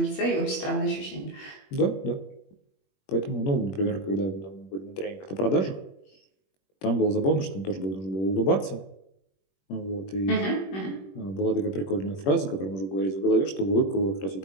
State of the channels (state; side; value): late; right; 21 ms